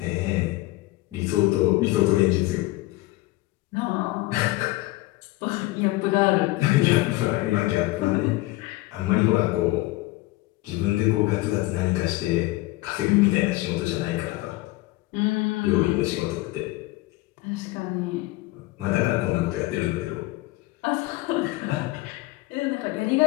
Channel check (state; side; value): quieter; right; 19.5 dB